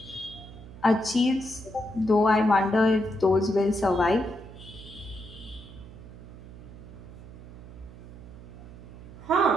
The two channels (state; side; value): noise; right; hum, 16 dB below the sound